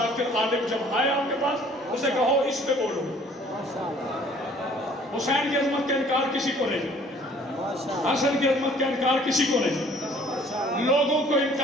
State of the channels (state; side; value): normal; both; correlation 0.56